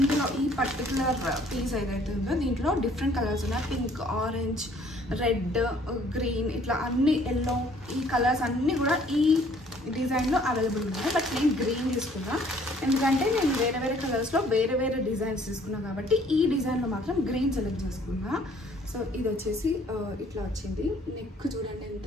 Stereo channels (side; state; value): both; normal; correlation 0.59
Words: ఈ పర్టికులర్ పీస్ ఏదైతే ఉందో దీంట్లో డిఫరెంట్ కలర్స్ ఉన్నాయి. పింక్, ఆరెంజ్, రెడ్, గ్రీన్, ఇట్లా అన్ని ఎల్లో, ఈ కలర్స్ అన్నీ కూడా ఈ డిజైన్లో అవైలబుల్ ఉన్నాయి. బట్ నేను గ్రీన్ తీసుకున్నా ఎందుకంటే నేను వేరే కలర్స్లో వేరే డిజైన్స్ తీసుకున్నాను కాబట్టి ఈ డిజైన్లో మాత్రం గ్రీన్ సెలెక్ట్ చేసుకున్నా. సో ఇది వచ్చేసి ఇట్లా వచ్చింది. నెక్ చూడండి ఎంత